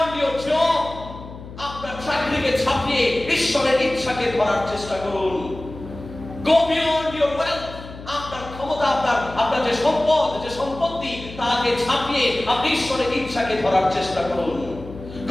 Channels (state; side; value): noise; left; hum, 14 dB below the sound